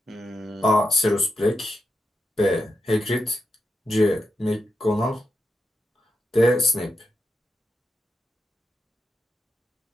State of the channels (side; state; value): both; normal; correlation 0.86